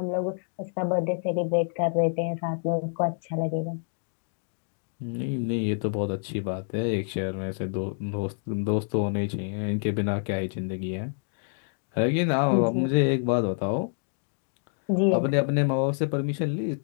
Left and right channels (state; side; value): silent; right; digital silence